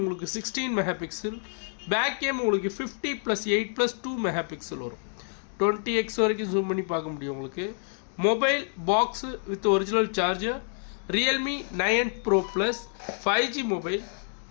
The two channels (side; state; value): right; silent; 57 dB below the other